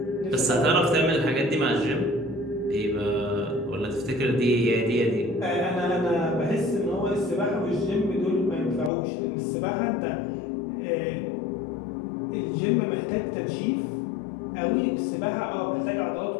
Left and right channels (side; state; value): right; drops out; at 8.9 s